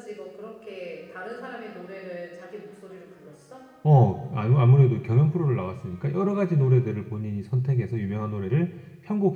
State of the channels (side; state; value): both; identical; correlation 1.00